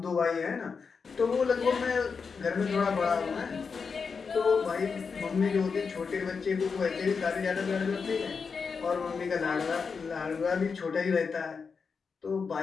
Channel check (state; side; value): quieter; right; 5.4 dB